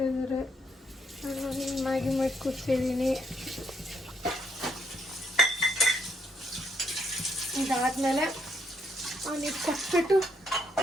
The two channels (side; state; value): both; normal; correlation 0.74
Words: ಇದ್ದಾರೆ. ನಾನು ಮ್ಯಾಗಿ ಮಾಡಿ ಕೂತಿದ್ದೀನಿ. ಇದಾದಮೇಲೆ ಅವನಿಗೆ ಕೊಟ್ಬಿಟ್ಟು